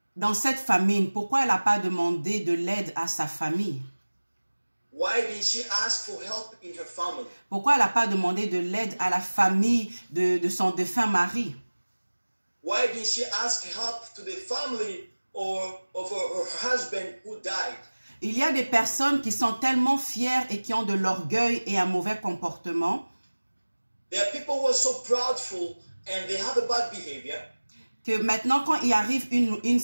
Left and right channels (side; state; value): both; inverted; correlation -1.00